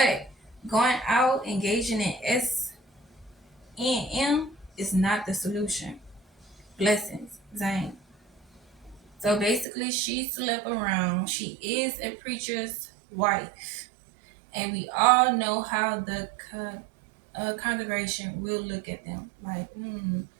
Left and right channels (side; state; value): left; drops out; at 9.7 s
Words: going out engaging in S&M is not the solution. Blessings, Zane. So basically, she slept around. She is a preacher's wife. And we all know how the congregation will look at them. Like,